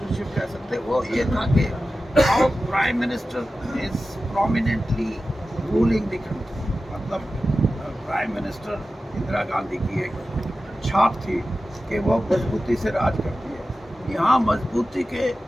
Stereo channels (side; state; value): both; normal; correlation 0.94